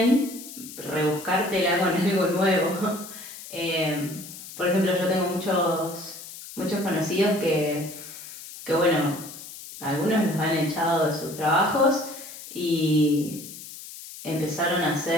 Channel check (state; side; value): noise; left; hiss, 14 dB below the sound